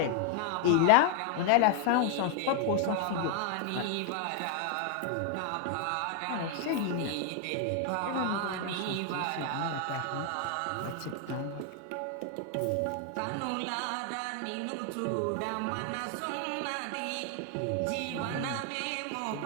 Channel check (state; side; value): different; both; correlation 0.00